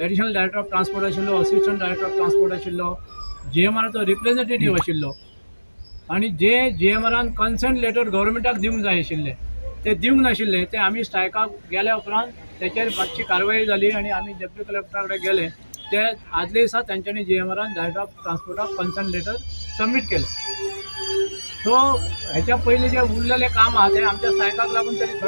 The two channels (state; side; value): inverted; both; correlation -1.00